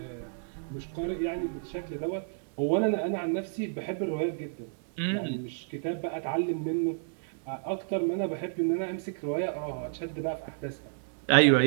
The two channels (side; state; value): left; silent; digital silence